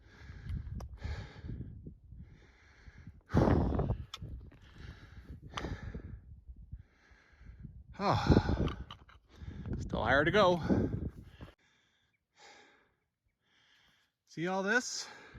Oh, still higher to go. See all this?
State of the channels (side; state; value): both; identical; correlation 1.00